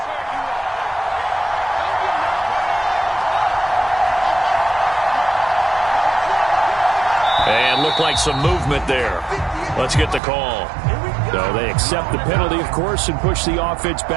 And looked like some movement there. Let's get the call. So they accept the penalty, of course, and push the offense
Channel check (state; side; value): drops out; left; at 10.2 s